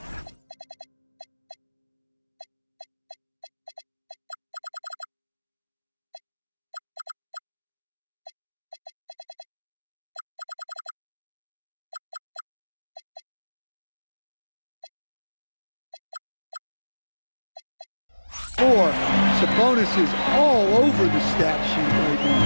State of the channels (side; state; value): both; inverted; correlation -1.00